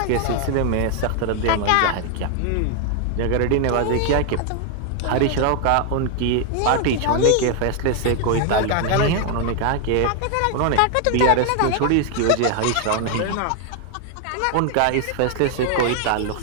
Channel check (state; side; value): different; both; correlation 0.00